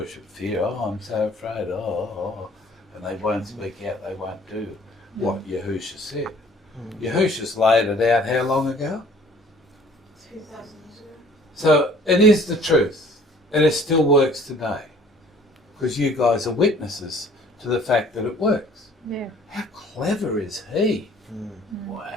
fear. Oh, I'm so afraid. Oh. And they won't speak out. They won't do. what Yahusha said. Yahusha's laid it out how long ago? 2,000 years ago. So it is the truth, and it still works today, because you guys are witnesses to the fact that it works. Yeah. How clever is he?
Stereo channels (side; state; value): both; normal; correlation 0.54